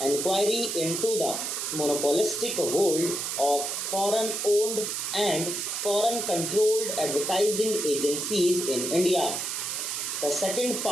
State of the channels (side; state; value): right; noise; hiss, 2 dB below the sound